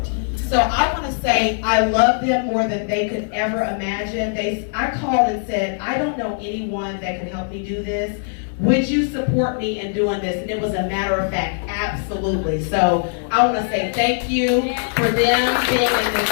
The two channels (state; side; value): silent; right; digital silence